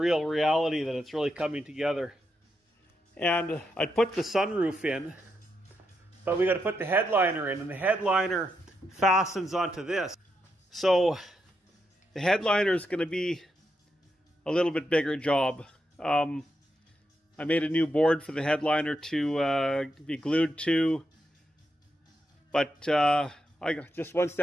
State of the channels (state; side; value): normal; both; correlation 0.83